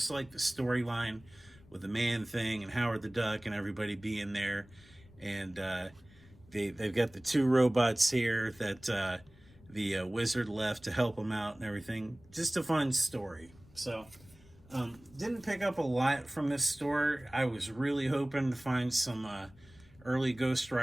like the storyline with the man thing and Howard the Duck and everybody being there. And they've got the two robots here that the wizard left to help them out and everything. Just a fun story. So didn't pick up a lot from this store. I was really hoping to find some early Ghost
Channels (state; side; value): noise; left; rumble, 25 dB below the sound